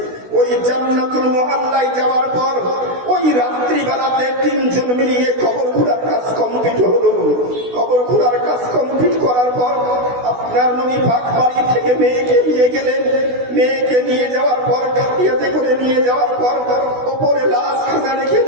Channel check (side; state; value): left; late; 16 ms